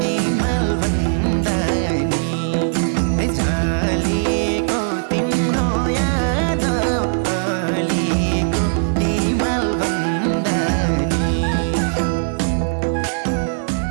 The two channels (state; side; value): silent; left; digital silence